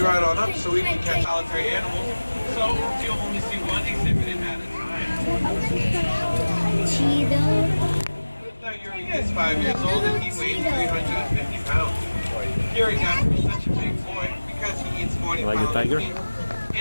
right on up so we can catch solitary animals, so you'll only see one exhibit at a time. Now Yuri is 5 years old and he weighs 350 pounds. Yuri got to be such a big boy because he eats 40 Like a pounds tiger? of meat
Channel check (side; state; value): both; inverted; correlation -1.00